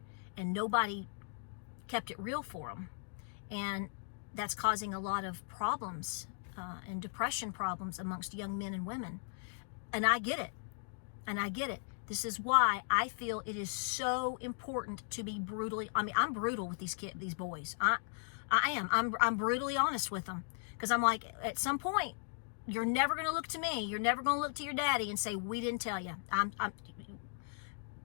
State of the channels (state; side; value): silent; right; digital silence